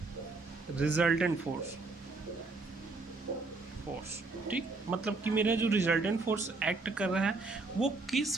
resultant force, ठीक। मतलब कि मेरा जो रिजल्टेंट फोर्स एक्ट कर रहा है वो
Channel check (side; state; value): left; quieter; 3.6 dB